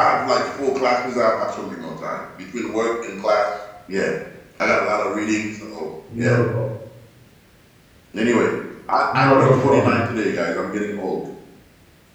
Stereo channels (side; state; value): both; identical; correlation 1.00